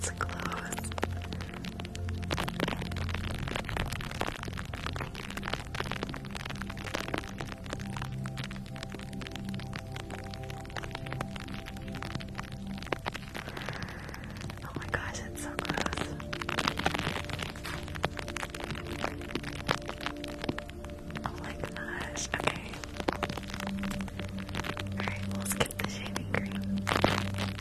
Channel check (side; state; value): both; identical; correlation 1.00